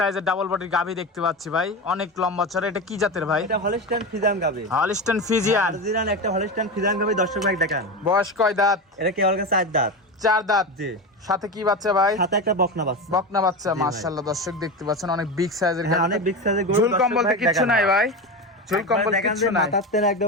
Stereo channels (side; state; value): both; normal; correlation 0.21